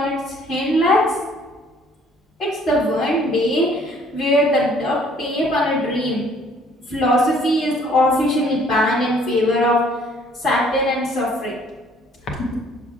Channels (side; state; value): both; normal; correlation 0.60